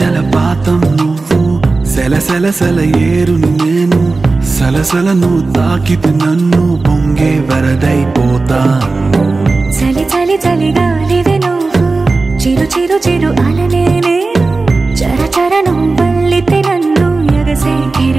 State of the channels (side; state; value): left; quieter; 3.7 dB